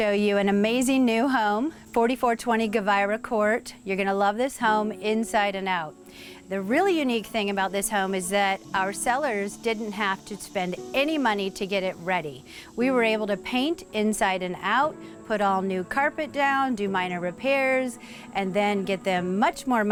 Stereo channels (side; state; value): both; identical; correlation 1.00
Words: you an amazing new home, 4420 Gavira Court. You're going to love this home inside and out. The really unique thing about this home is that our sellers didn't have to spend any money to get it ready. We were able to paint inside and out, put all new carpet down, do minor repairs, and then get them much more